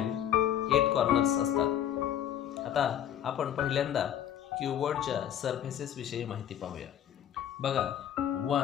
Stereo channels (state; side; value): quieter; right; 10.4 dB